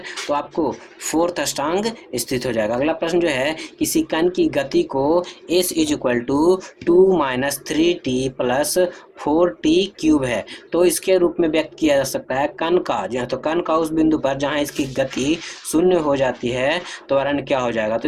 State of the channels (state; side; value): identical; both; correlation 1.00